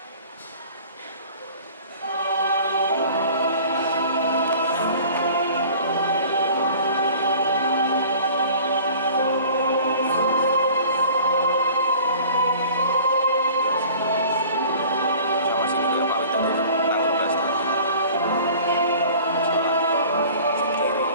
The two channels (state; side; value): inverted; both; correlation -0.47